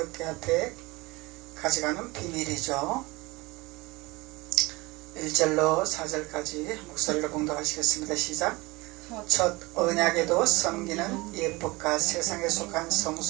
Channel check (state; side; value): quieter; left; 23.1 dB